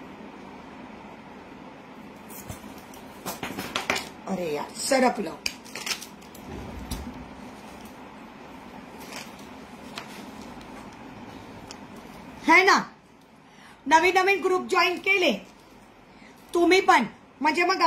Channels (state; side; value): identical; both; correlation 1.00